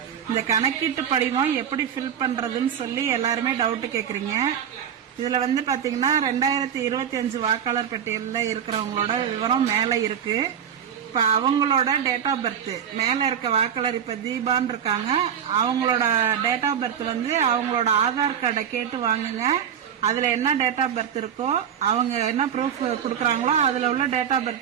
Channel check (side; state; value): left; quieter; 8.7 dB